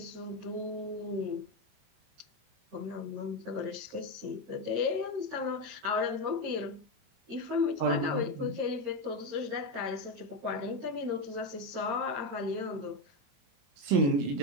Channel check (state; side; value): late; left; 21 ms